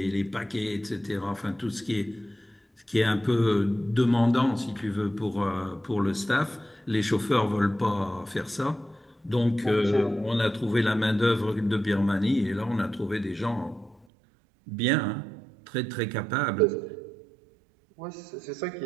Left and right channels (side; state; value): left; drops out; at 14.1 s